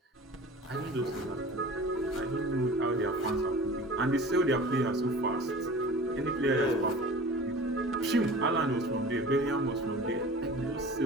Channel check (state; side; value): normal; both; correlation 0.40